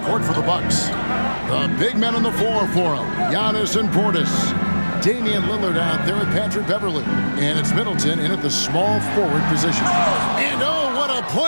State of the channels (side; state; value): both; inverted; correlation -1.00